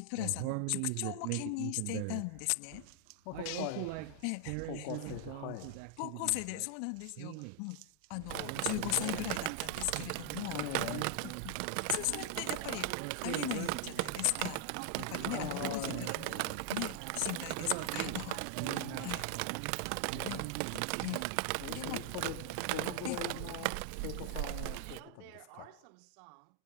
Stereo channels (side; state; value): both; different; correlation 0.00